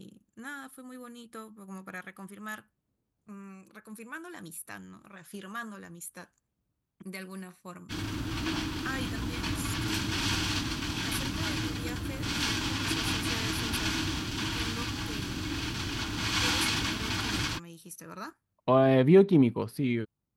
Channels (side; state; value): both; identical; correlation 1.00